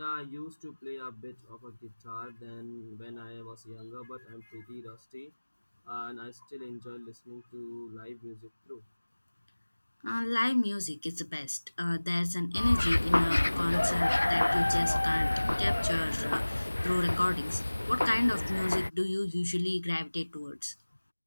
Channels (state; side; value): inverted; both; correlation -1.00